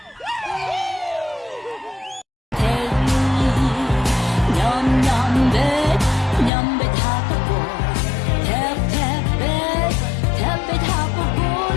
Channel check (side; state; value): right; drops out; at 6.5 s